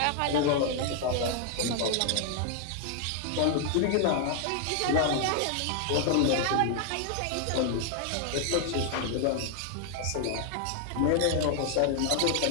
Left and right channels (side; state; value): both; different; correlation 0.00